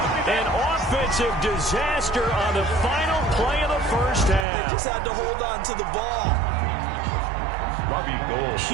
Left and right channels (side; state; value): left; drops out; at 4.5 s